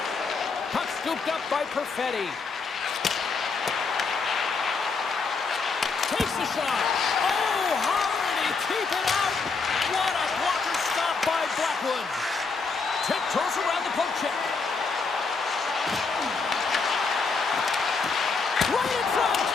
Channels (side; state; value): right; quieter; 4.6 dB